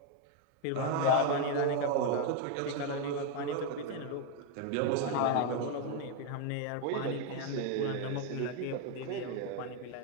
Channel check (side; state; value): both; different; correlation 0.01